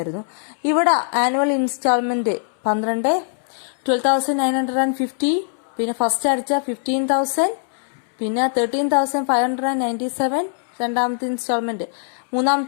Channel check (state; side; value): silent; right; 65 dB below the other